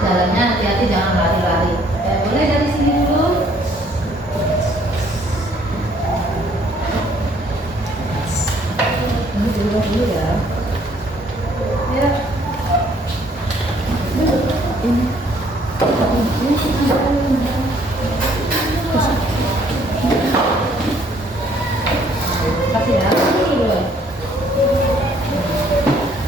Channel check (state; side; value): normal; both; correlation 0.63